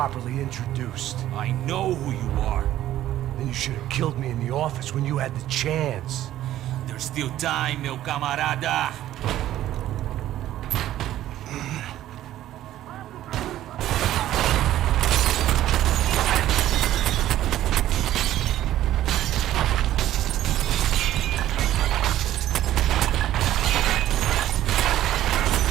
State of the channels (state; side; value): quieter; left; 13.2 dB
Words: introduced. I know who you are. Then you should have killed me in the office when you had the chance. There's still time, meu camarada.